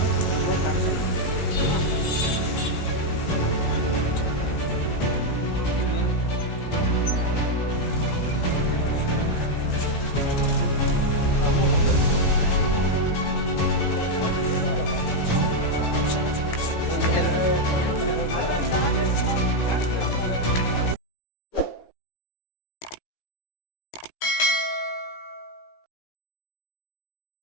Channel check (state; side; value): late; right; 17 ms